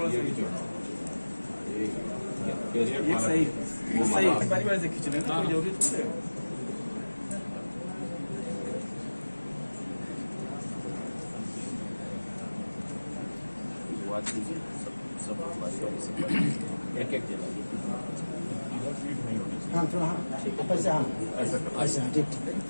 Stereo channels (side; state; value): both; inverted; correlation -1.00